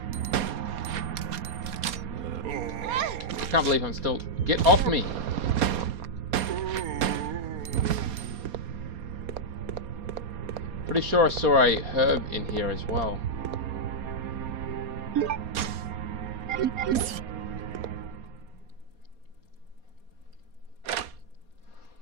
I can't believe I'm still... Get off me! Pretty sure I saw a herb in here as well.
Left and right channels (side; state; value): left; late; 4.2 ms